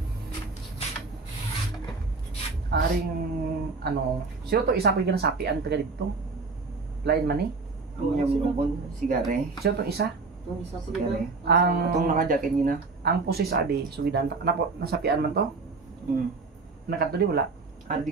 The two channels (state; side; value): quieter; left; 4.1 dB